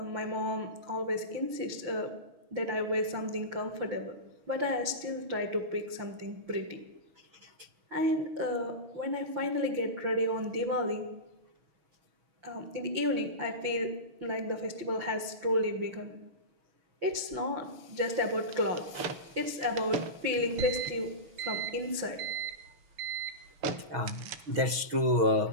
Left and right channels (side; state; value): left; late; 5.9 ms